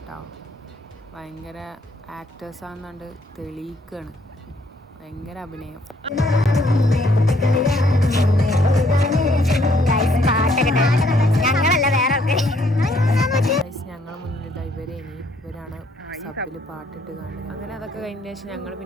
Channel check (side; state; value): both; normal; correlation 0.67